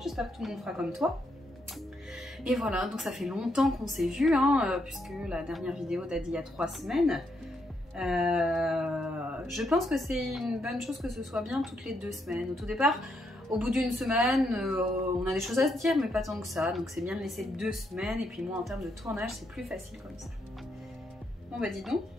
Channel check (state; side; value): normal; both; correlation 0.78